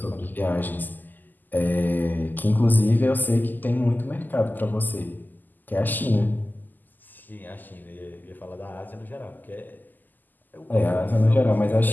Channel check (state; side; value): late; right; 0.086 ms